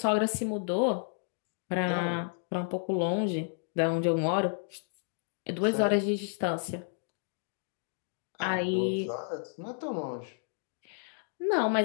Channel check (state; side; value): silent; right; 57 dB below the other